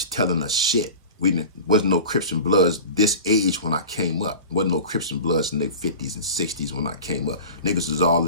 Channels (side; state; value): both; inverted; correlation -0.35